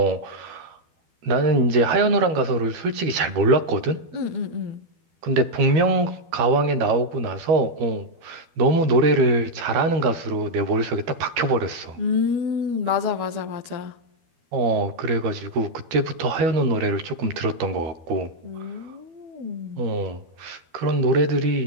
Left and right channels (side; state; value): left; late; 12 ms